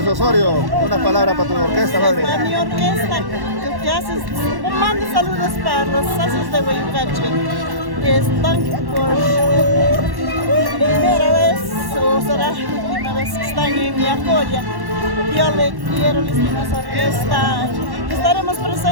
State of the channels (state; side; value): late; left; 1.1 ms